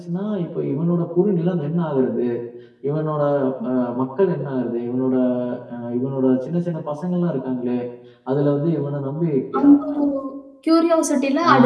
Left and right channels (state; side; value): identical; both; correlation 1.00